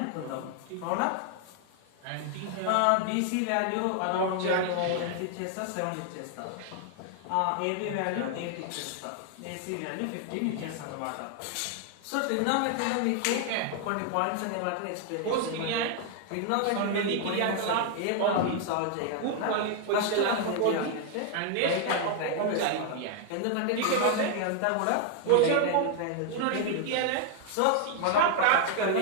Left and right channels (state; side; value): different; both; correlation 0.00